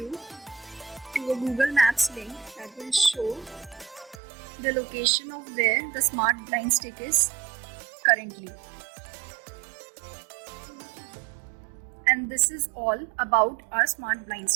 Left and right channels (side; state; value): left; drops out; at 4.2 s